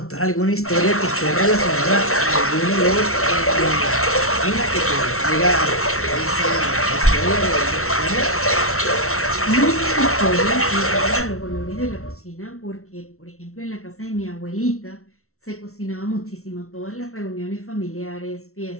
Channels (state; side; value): late; right; 0.63 ms